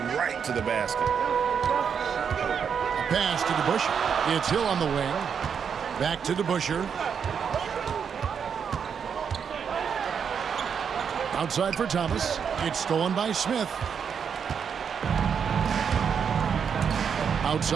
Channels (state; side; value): quieter; left; 7.0 dB